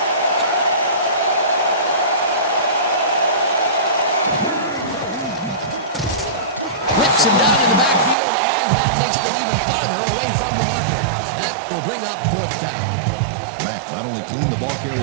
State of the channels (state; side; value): drops out; left; at 8.2 s